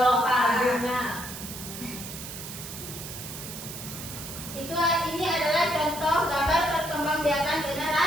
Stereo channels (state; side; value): noise; right; hiss, 10 dB below the sound